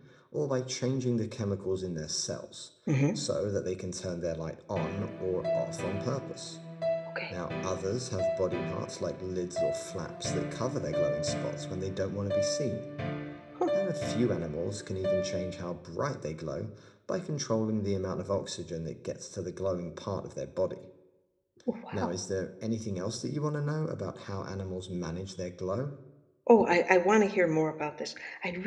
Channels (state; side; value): identical; both; correlation 1.00